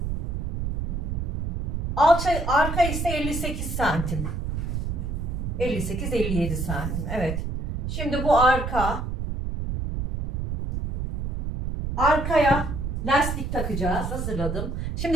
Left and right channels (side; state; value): right; noise; rumble, 2 dB below the sound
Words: Arka ise 58 santim. 58-57 santim. Evet. Şimdi bu arkaya lastik takacağız. Hazırladım.